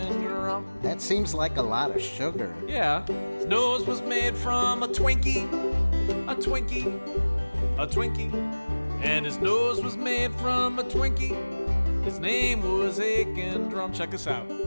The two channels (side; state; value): both; inverted; correlation -1.00